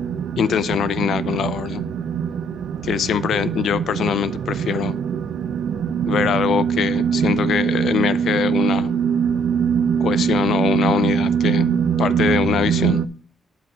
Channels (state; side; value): normal; both; correlation 0.64